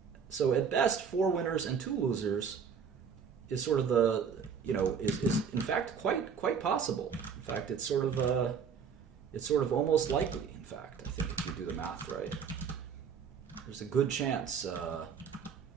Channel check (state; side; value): quieter; left; 6.6 dB